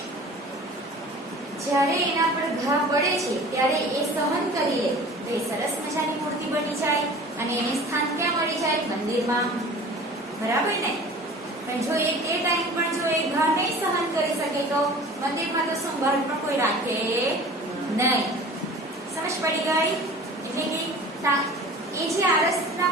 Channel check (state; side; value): normal; both; correlation 0.42